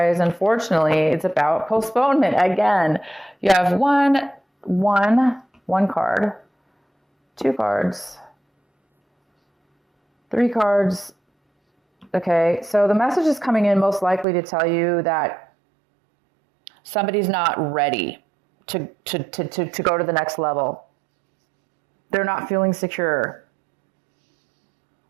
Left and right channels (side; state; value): left; drops out; at 14.2 s